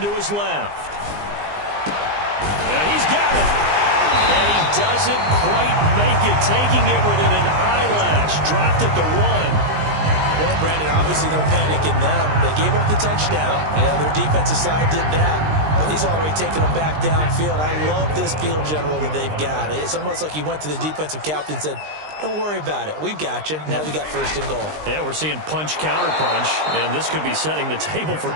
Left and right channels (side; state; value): left; late; 20 ms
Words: his left. Yeah, he's got it. And he doesn't quite make it, taking it within an eyelash. Dropped at the 1. Well, Brandon, obviously no panic in them. They gave up the touchdown. You know, their defensive side did that. But he's already taken them back downfield. I love this field general that they've got. It's almost like he went to the defensive captain and said, don't worry about it. We've got you. Now we got 1st and goal. Yeah, we're seeing punch, counter punch, and this could be setting the table for